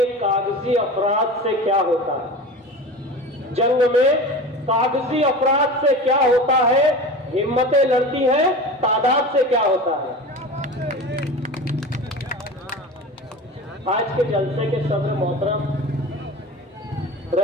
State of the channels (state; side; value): normal; both; correlation 0.32